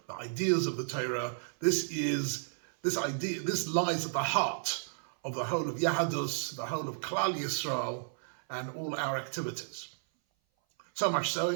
the ideas of the Torah. This lies at the heart of the whole of Yahadus, the whole of Klal Yisrael, and all our activities. So much so,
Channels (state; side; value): silent; left; 56 dB below the other